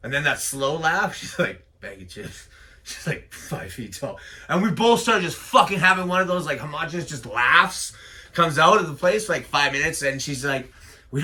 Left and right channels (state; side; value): identical; both; correlation 1.00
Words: And then that slow laugh, she's like, bag of chips. She's like 5 feet tall. And we both started just fucking having one of those, like, homogenous just laughs. Comes out of the place for like 5 minutes, and she's like, we